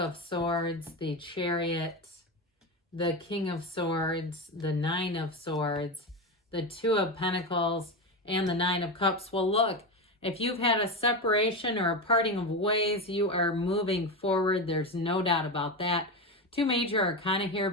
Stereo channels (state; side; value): normal; both; correlation 0.17